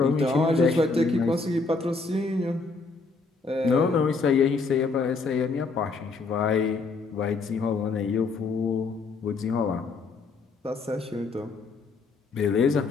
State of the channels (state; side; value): quieter; right; 4.1 dB